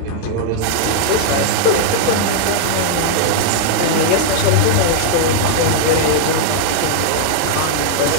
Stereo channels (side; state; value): both; different; correlation 0.00